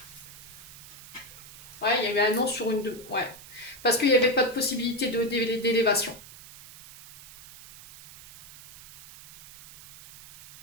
Ouais, il y avait un non sur une... Ouais. Parce qu'il n'y avait pas de possibilité d'élévation.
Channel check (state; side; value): noise; right; hiss, 18 dB below the sound